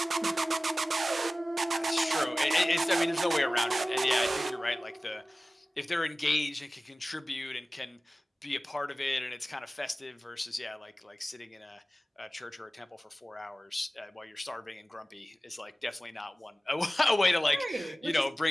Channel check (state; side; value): normal; both; correlation 0.96